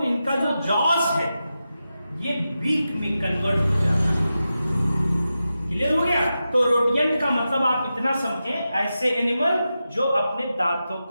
इनका जो जॉस है ये बीक में कन्वर्ट हो जाता है। क्लियर हो गया? तो रोडियंट का मतलब आप इतना समझें, ऐसे एनिमल जो अपने दांतों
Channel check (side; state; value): both; inverted; correlation -0.91